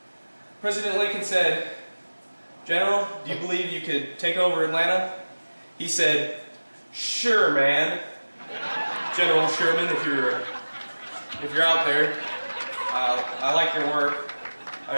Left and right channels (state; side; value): inverted; both; correlation -1.00